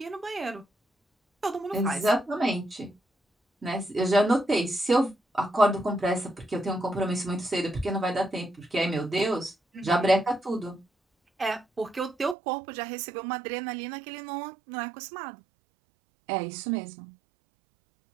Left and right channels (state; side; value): drops out; left; at 12.4 s